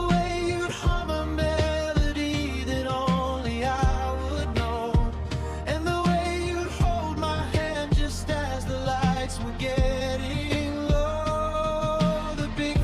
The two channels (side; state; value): both; identical; correlation 1.00